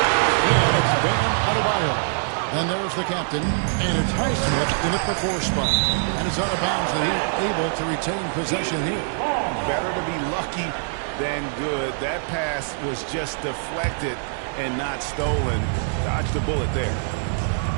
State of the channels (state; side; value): silent; left; digital silence